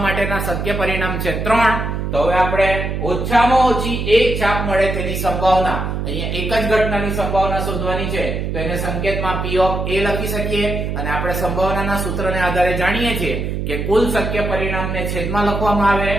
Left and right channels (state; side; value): noise; right; hum, 3 dB below the sound